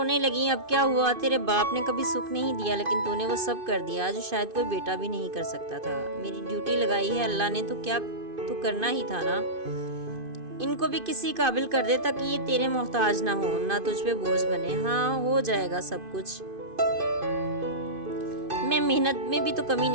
لگی۔ اب کیا ہوا؟ تیرے باپ نے کبھی سکھ نہیں دیا لیکن تو نے وہ سب کر دیا جو شاید کوئی بیٹا بھی نہیں کر سکتا تھا۔ میری ڈیوٹی لگائی ہے اللہ نے تو کیا تو کرنا ہی تھا نا۔ ان کو بھی کسی قابل کر دے تاکہ یہ تیرے محتاج نہ ہو، نہ تجھ پہ بوجھ بنے۔ ہاں ہو جائے گا سب کچھ، میں محنت میں بھی تو کمی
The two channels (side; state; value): left; late; 2.5 ms